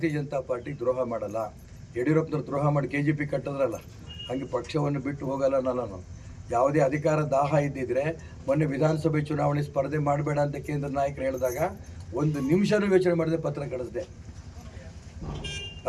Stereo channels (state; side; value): identical; both; correlation 1.00